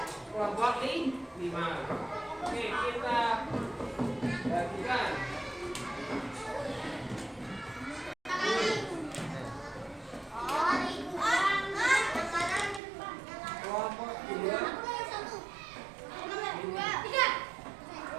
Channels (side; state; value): left; drops out; at 12.8 s